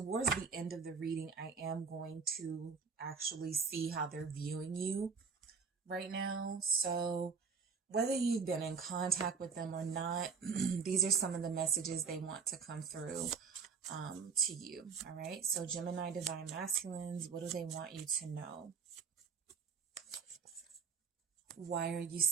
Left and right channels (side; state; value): left; quieter; 5.6 dB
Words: the end of the reading, I am going to actually see how they're viewing you right now. So whether you've been in contact with them or not, these are some of the messages they want to come through to you. All right. So Gemini divine masculines, what do they want you to know? Why are you